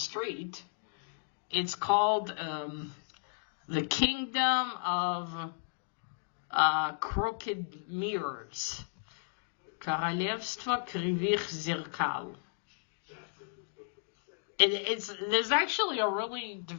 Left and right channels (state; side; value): silent; right; digital silence